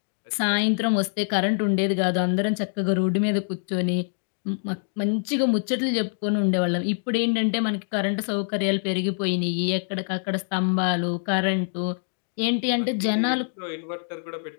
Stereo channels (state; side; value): silent; right; digital silence